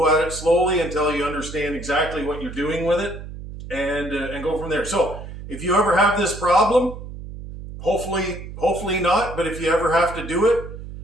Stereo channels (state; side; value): noise; right; hum, 11 dB below the sound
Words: at it slowly until you understand exactly what you're doing with it, and go from there. So if you ever have this problem, hopefully not, but if you ever have to do it,